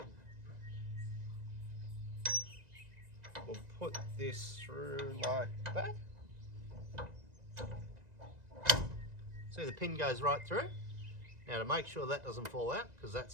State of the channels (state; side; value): late; left; 1.9 ms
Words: we'll put this through like that. See, the pin goes right through. Now to make sure that doesn't fall out, because